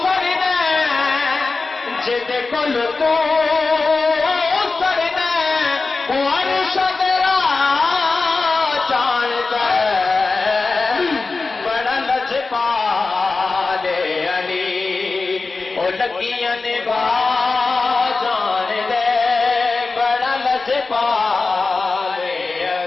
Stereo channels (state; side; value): quieter; right; 3.9 dB